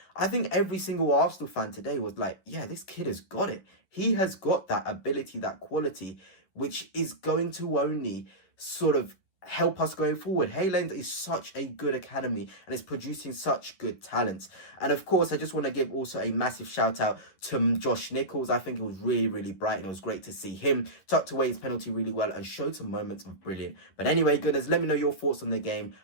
I think every single Arsenal fan today was like, yeah, this kid has got it. He has got that ability, that quality, which is going to only sort of help us going forward. Hayland is such a good academy and is producing such good talents. And of course, I just want to give also a massive shout out to Josh Nichols. I think it was really, really bright and it was great to see him tucked away his penalty really well and showed some moments of brilliant. But anyway, goodness, let me know your thoughts on the game.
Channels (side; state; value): right; late; 10 ms